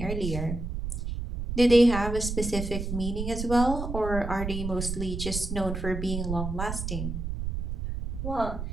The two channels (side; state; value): right; noise; rumble, 4 dB below the sound